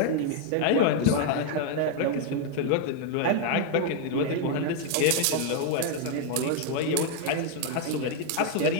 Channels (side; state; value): both; different; correlation 0.00